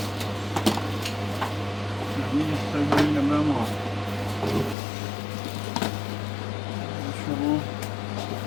نمی استگویی نمیم ها شما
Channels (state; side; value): drops out; right; at 4.8 s